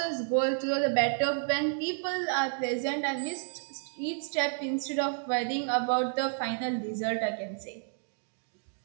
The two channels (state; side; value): silent; left; digital silence